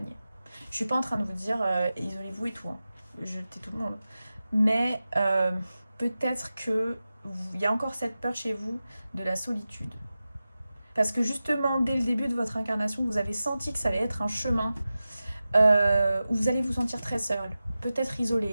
Je suis pas en train de vous dire isolez-vous et tout, hein. Jetez tout le monde. Mais peut-être que il y a encore cette peur chez vous de la solitude. Parce que justement, dès le début de votre incarnation, vous avez senti que ça allait être un chemin où vous allez vous sentir très seul, peut-être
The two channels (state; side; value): inverted; both; correlation -0.94